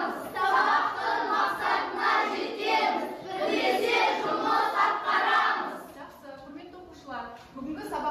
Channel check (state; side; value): identical; both; correlation 1.00